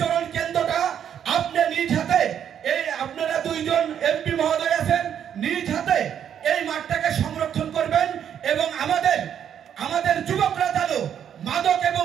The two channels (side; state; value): left; quieter; 9.1 dB